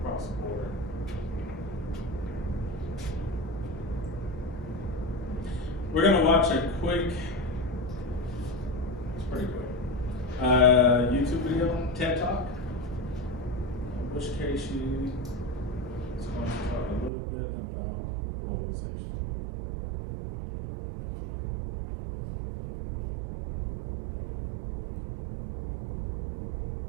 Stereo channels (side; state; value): left; drops out; at 17.1 s